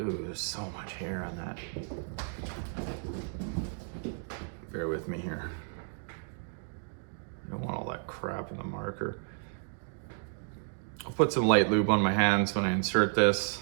there's so much hair on that. Bear with me here. I don't want all that crap in the marker. I'll put some light lube on my hands when I insert this.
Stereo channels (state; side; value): silent; left; 56 dB below the other